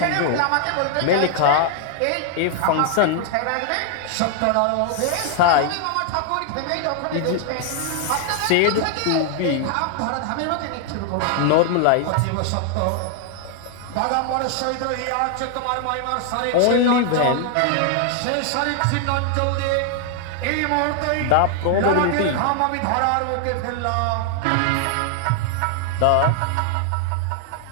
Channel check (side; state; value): both; different; correlation 0.00